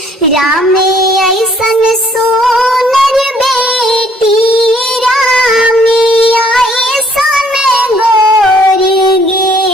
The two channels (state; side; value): normal; both; correlation 0.62